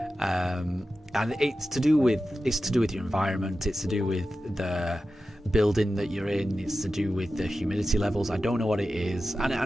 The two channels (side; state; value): both; normal; correlation 0.92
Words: And it's to do with your environment. It's to do with the building that you're in. It's to do with the humidity levels. I don't know what it is,